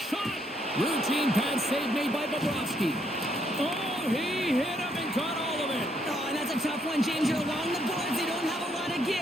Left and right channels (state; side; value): normal; both; correlation 0.72